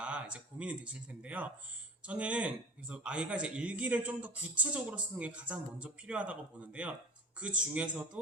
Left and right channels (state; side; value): normal; both; correlation 0.34